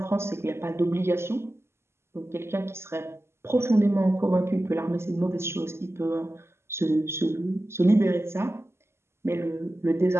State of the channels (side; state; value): left; late; 0.12 ms